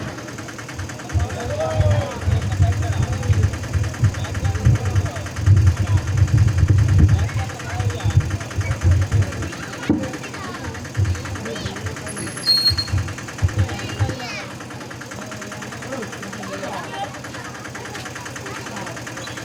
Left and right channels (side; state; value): both; identical; correlation 1.00